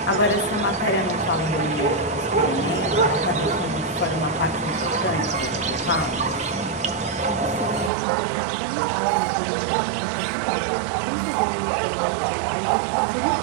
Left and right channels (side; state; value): left; drops out; at 7.9 s